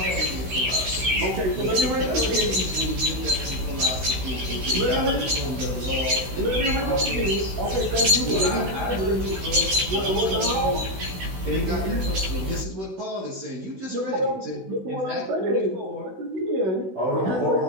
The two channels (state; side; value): late; left; 16 ms